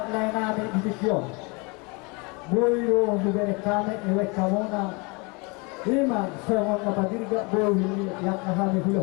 lainami ibikyon. Boyo bubere kame ewe kamona. Ima soal mapadirga boyo yak kahami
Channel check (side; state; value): right; quieter; 29.3 dB